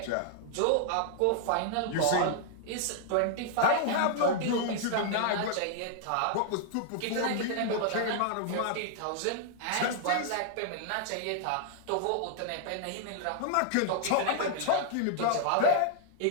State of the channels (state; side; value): different; both; correlation -0.01